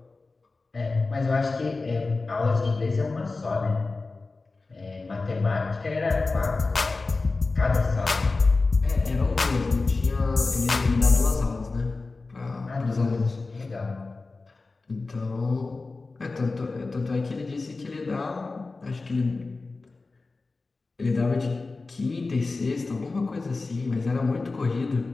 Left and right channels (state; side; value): quieter; right; 3.7 dB